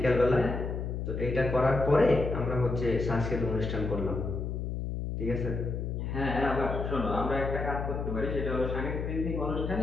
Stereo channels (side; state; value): left; noise; hum, 3 dB below the sound